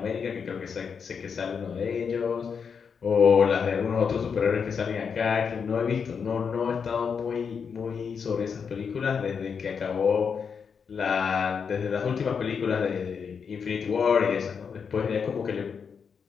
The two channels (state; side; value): quieter; right; 6.3 dB